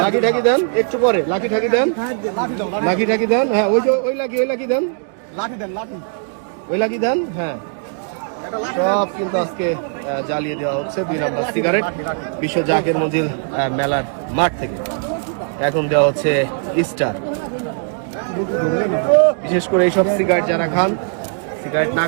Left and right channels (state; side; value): silent; left; 62 dB below the other